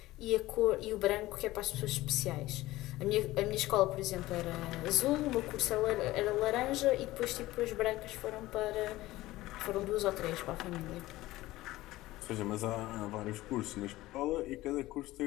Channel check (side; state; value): right; quieter; 17.4 dB